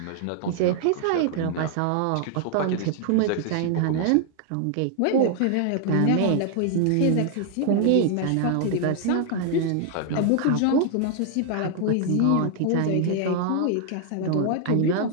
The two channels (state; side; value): different; both; correlation 0.00